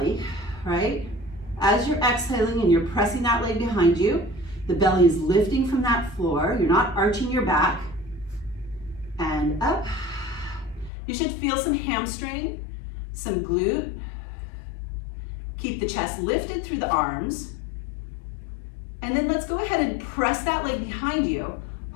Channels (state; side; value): drops out; right; at 10.9 s